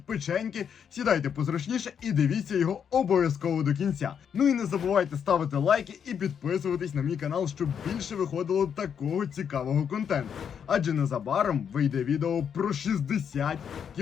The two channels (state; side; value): quieter; right; 7.7 dB